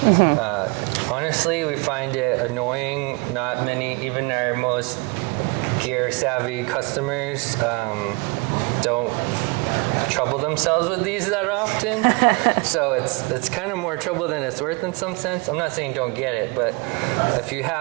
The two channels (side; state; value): left; quieter; 29.0 dB